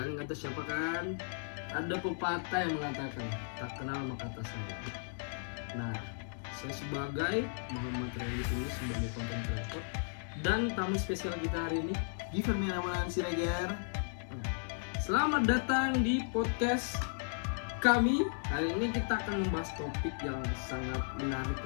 nggak tahu siapa kan? Ada pepatah yang mengatakan tak kenal maka tak sayang. Nah, saya sebagai Muhammad Randy ini sebagai content creator dan tamu spesial kita hari ini, Given Miraman Siregar. selamat datang di podcast kami. Hari ini kita akan membahas topik yang sangat menarik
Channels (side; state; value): right; silent; 54 dB below the other